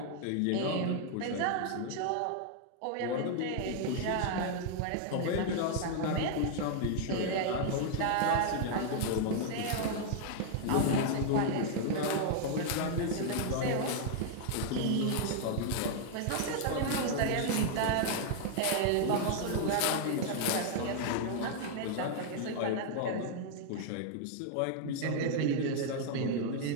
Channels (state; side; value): different; both; correlation 0.00